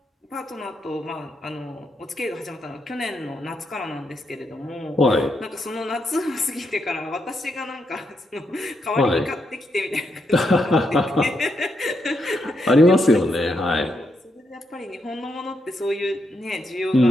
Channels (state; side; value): normal; both; correlation 0.81